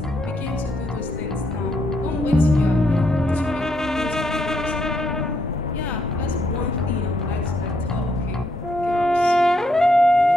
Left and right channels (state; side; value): normal; both; correlation 0.76